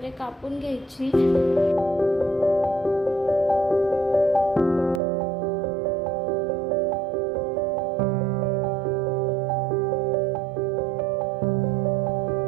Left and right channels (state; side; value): drops out; left; at 5.0 s